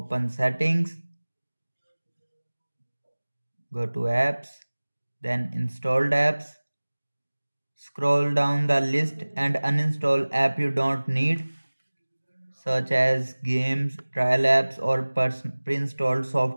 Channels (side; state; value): both; inverted; correlation -1.00